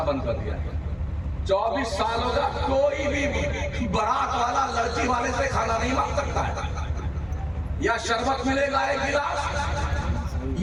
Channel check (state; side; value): identical; both; correlation 1.00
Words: बंद कर दिया। 24 साल होगा, कोई भी बारात वाला लड़की वाले से खाना नहीं मांग सकता है। या शरबत मिलेगा 1 गिलास,